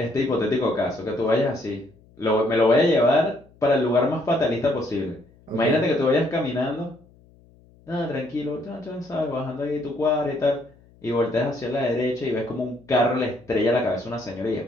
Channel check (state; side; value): noise; left; hum, 28 dB below the sound